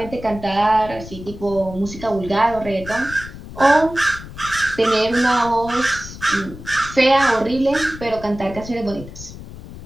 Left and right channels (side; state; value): left; noise; rumble, 14 dB below the sound